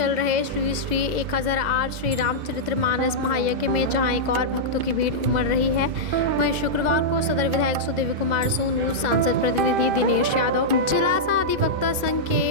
रहे श्री 1008 श्री रामचरितमानस महायज्ञ में जहां एक और भक्तों की भीड़ उमड़ रही है, वहीं शुक्रवार को सदर विधायक सुदेवी कुमार सोनू, सांसद प्रतिनिधि दिनेश यादव, जिला अधिवक्ता संघ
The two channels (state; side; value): late; left; 2.1 ms